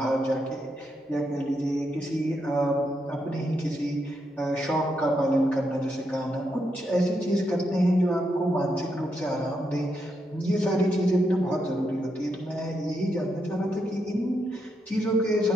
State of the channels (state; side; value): normal; both; correlation 0.81